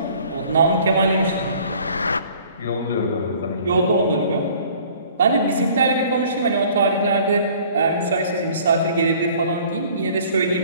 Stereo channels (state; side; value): inverted; both; correlation -0.53